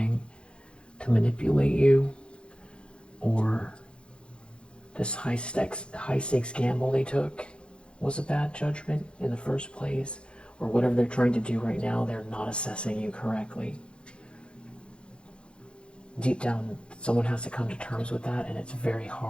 to manipulate you. Or this high stakes gamble they took was a bad judgment in the first place. Or whatever they're trying to do right now, they're not assessing you correctly. Deep down, someone has to come to terms with that, and it's very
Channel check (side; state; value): right; late; 0.056 ms